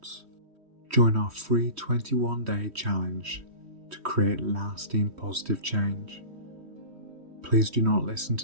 join our free 21-day challenge to create lasting positive change. Please do not listen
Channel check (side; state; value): left; late; 3.1 ms